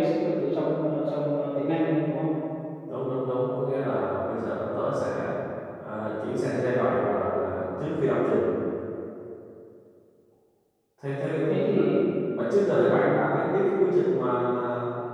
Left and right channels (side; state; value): both; identical; correlation 1.00